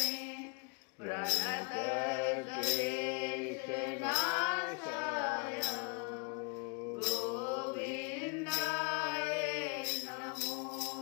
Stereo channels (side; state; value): right; quieter; 34.5 dB